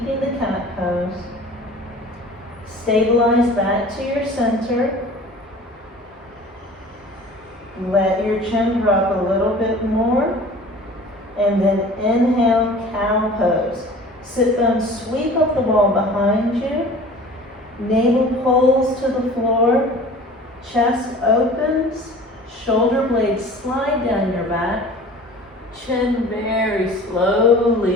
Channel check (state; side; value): normal; both; correlation 0.44